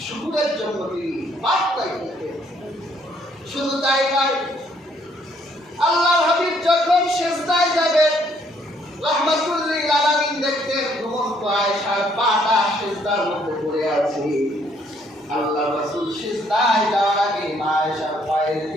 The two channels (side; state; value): both; normal; correlation 0.67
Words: শুকরের জন্য তিনি পাক চাইতেন। শুধু তাই নয়, আল্লাহর হাবিব যখন সিজদায় যাবেন, রাহমাতুল্লিল আলামিন দেখতেন ঘুমন্ত আয়েশার পাটা সিজদার মধ্যে পড়ে আছে। আল্লাহ রাসূল সিজদায় যাওয়ার আগে মা আয়েশার পায়ের